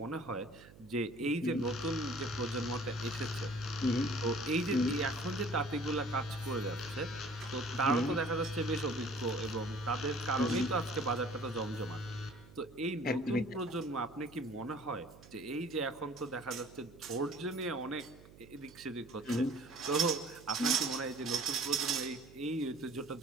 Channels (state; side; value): noise; right; hum, 21 dB below the sound